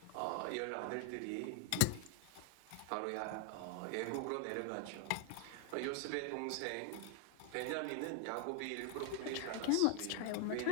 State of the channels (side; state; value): both; different; correlation 0.00